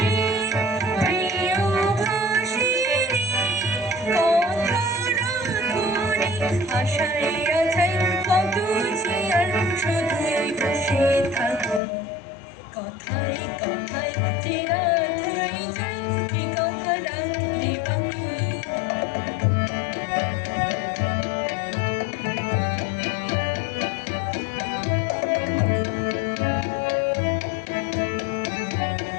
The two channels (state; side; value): drops out; right; at 11.8 s